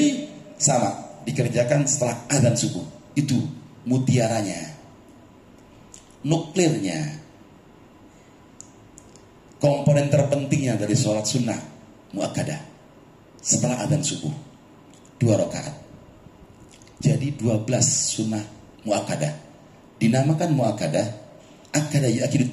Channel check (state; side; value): identical; both; correlation 1.00